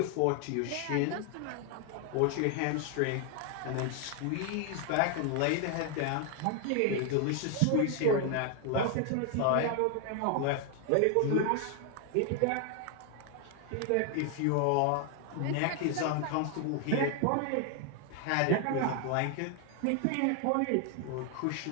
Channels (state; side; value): different; both; correlation 0.00